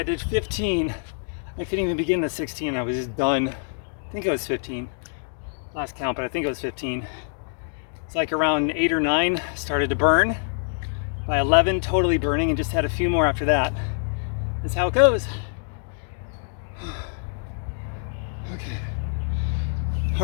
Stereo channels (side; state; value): right; silent; digital silence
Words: did 15. I couldn't even begin the 16, I was just done. I think it was 15. Last count, but I think it was 15. It's like around 8 or 9, started to burn. By 11, totally burning, and just had a few more after that. That's how it goes. Okay.